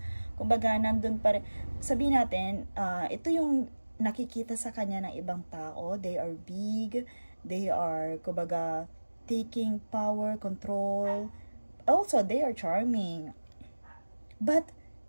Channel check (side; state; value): both; inverted; correlation -1.00